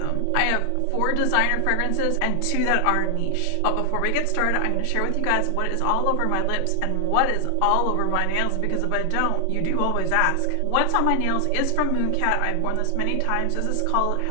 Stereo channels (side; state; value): both; different; correlation 0.00